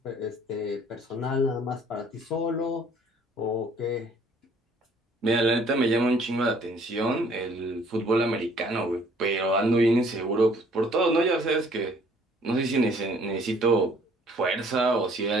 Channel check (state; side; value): normal; both; correlation 0.58